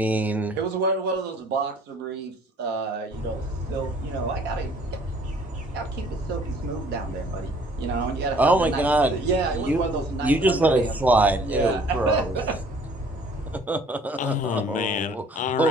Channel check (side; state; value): both; normal; correlation 0.56